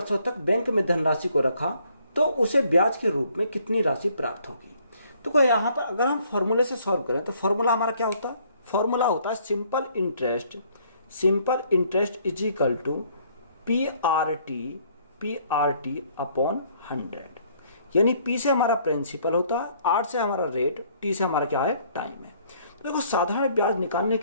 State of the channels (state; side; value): inverted; both; correlation -0.63